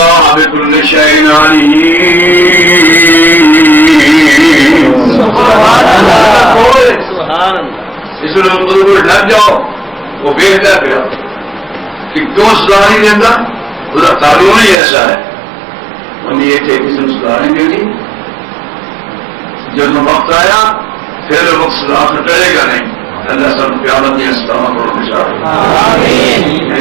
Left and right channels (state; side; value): drops out; left; at 14.8 s